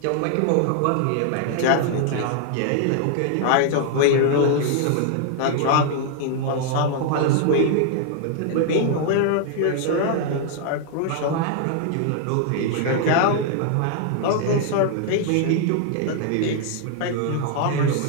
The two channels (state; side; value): different; both; correlation 0.00